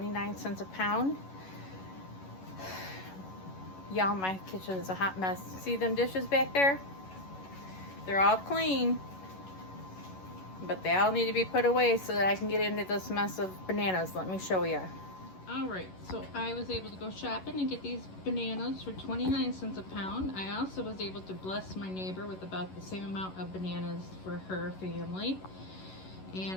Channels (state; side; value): late; right; 11 ms